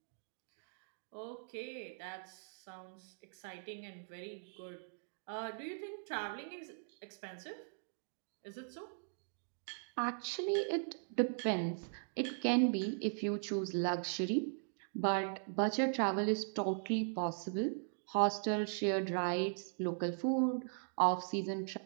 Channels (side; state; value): left; silent; digital silence